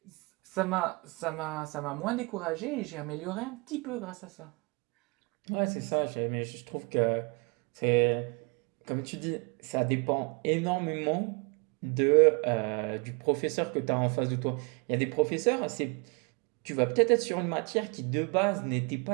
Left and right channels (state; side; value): quieter; left; 30.4 dB